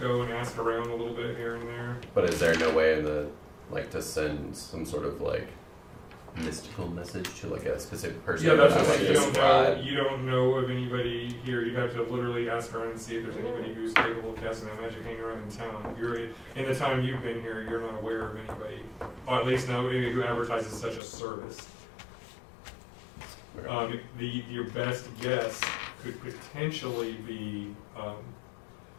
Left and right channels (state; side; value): drops out; right; at 21.0 s